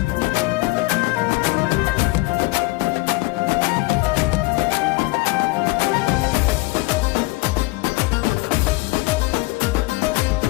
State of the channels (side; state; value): right; quieter; 22.2 dB